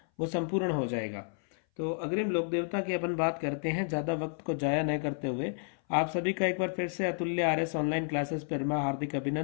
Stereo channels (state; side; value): silent; right; 57 dB below the other